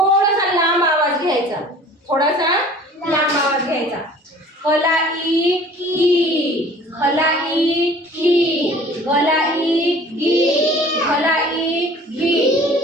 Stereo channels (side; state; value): both; normal; correlation 0.48